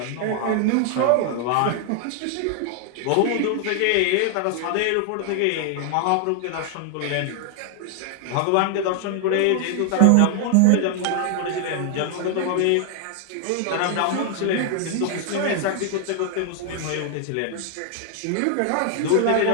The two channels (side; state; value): both; different; correlation 0.00